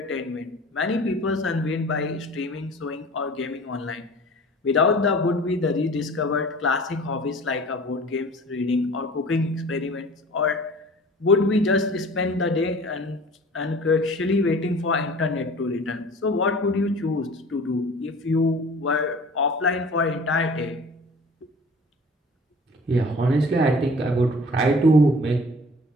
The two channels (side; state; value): both; normal; correlation 0.44